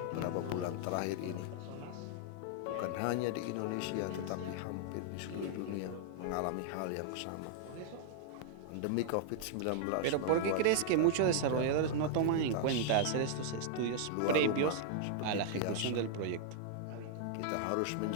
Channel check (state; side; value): different; both; correlation -0.01